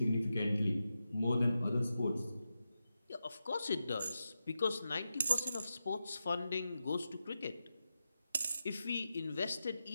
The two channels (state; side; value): inverted; both; correlation -0.89